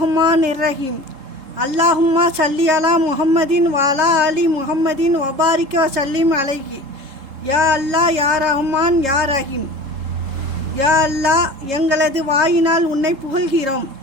ரஹீம். அல்லாஹும்மா சல்லி அலா முஹம்மதின் வாலா அலி முஹம்மதின் வபாரிக வசல்லிம் அலைஹி. யா அல்லாஹ், யா ரஹ்மான், யா ரஹீம். யா அல்லாஹ், எங்களது வாயினால் உன்னை புகழ்கிறோம்.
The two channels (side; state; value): left; late; 3.7 ms